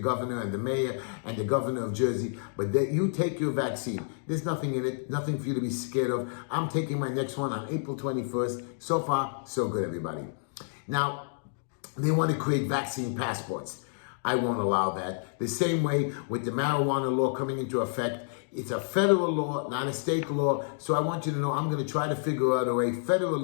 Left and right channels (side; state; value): right; silent; digital silence